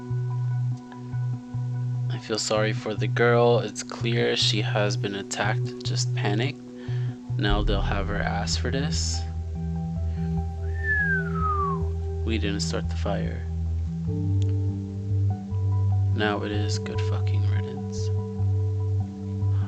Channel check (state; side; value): identical; both; correlation 1.00